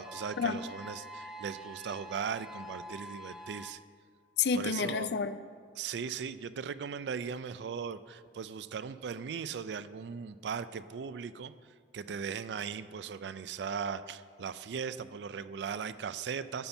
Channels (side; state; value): both; normal; correlation 0.04